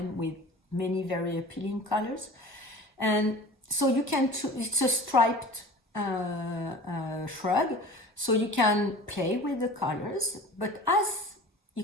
with many very appealing colors. And so you can choose, it's a striped shrug, so you can play with the colors, but as you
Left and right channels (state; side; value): normal; both; correlation 0.39